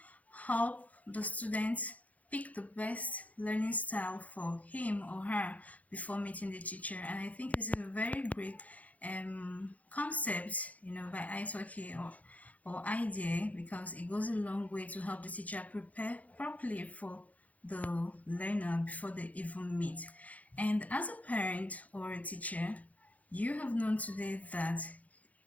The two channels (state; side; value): late; right; 0.072 ms